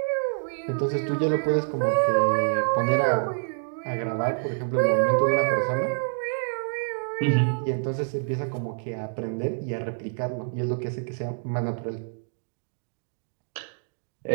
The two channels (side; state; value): left; silent; digital silence